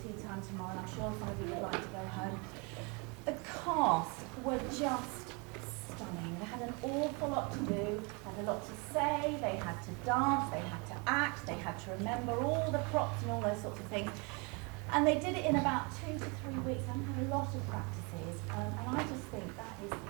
tea time tomorrow, and I'm sure some of you would like to go home. The cast were just stunning. They had an awful lot to do, had a lot to say, they had to dance, they had to act, they had to remember all the props and all those sorts of things. And they did it in about 2 to 3 weeks. I had a lot of practices, and I just think that is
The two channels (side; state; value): left; quieter; 31.0 dB